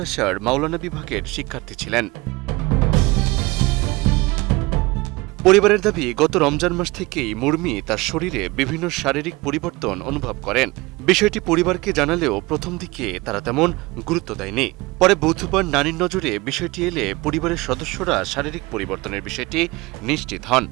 মাওলানা বিভাগের শিক্ষার্থী ছিলেন। পরিবারের দাবি, গত রমজান মাস থেকেই মুরমি তার শরীরে বিভিন্ন শারীরিক পরিবর্তন অনুভব করেন। বিষয়টি পরিবারকে জানালেও প্রথম দিকে তারা তেমন গুরুত্ব দেয়নি। পরে বুধবার নানির নজরে বিষয়টি এলে পরিবারের সদস্যরা শারীরিক পরিবর্তনের বিষয়টি নিশ্চিত হন।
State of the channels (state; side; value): quieter; left; 22.7 dB